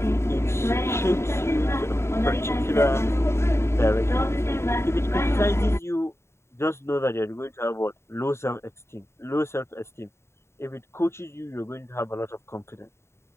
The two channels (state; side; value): late; right; 0.13 ms